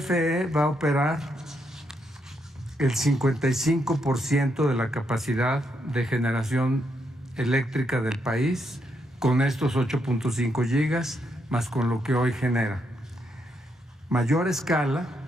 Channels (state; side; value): normal; both; correlation 0.78